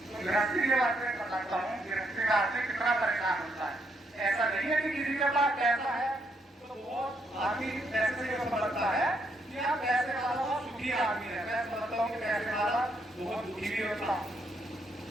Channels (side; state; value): both; normal; correlation 0.75